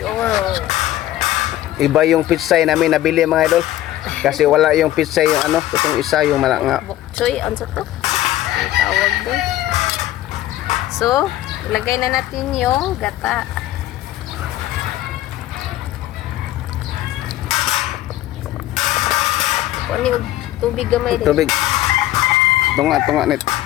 Iba yung pitsay namin nabili mga idol. Kasi wala yung pizza yung ano, itong isa yung malanga. Bok choy, ano to? Ang tawag doon. So, ilagay na natin yung gata. Kuha yung tubig gamay din. Tubig. Tunga net.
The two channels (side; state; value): right; quieter; 14.5 dB